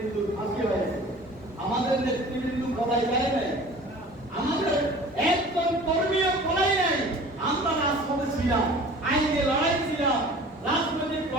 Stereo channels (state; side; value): normal; both; correlation 0.44